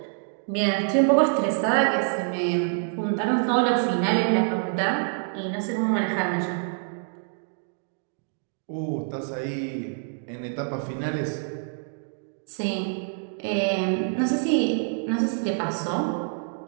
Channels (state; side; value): silent; left; digital silence